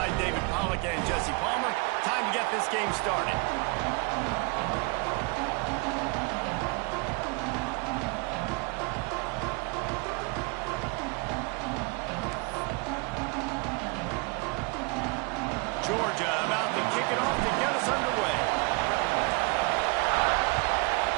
David Pollack and Jesse Palmer. Time to get this game started. Georgia about to kick it off to get us underway.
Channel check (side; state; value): left; quieter; 30.3 dB